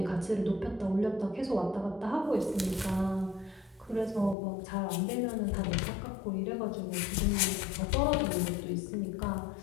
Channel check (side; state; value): right; drops out; at 4.4 s